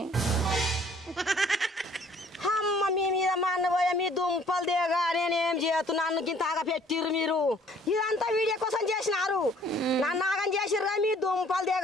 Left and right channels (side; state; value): both; normal; correlation 0.58